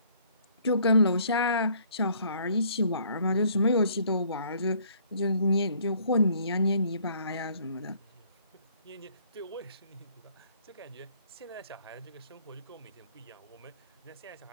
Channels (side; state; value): both; inverted; correlation -0.62